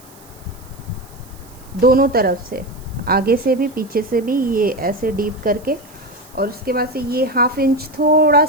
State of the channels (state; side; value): noise; right; hiss, 25 dB below the sound